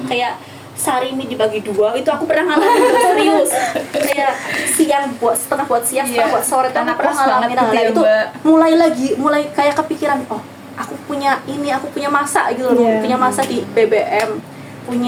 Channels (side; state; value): both; identical; correlation 1.00